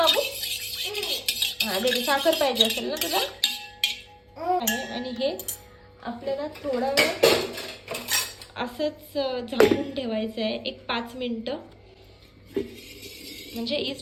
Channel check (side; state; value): both; identical; correlation 1.00